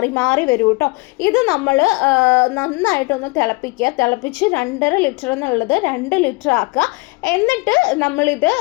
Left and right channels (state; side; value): quieter; right; 26.1 dB